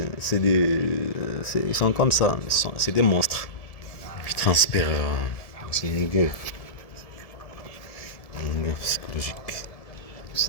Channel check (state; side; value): late; right; 1.7 ms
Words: ils sont comme ça, c'est des monstres. Ils transpirent, c'est une gueule psychologique.